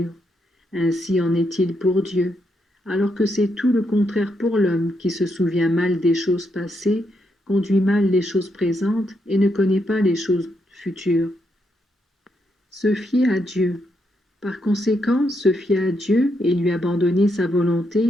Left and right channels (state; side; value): normal; both; correlation 0.79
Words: Ainsi en est-il pour Dieu, alors que c'est tout le contraire pour l'homme qui se souvient mal des choses passées, conduit mal les choses présentes et ne connaît pas les choses futures. Se fier à Dieu. Par conséquent, se fier à Dieu et lui abandonner sa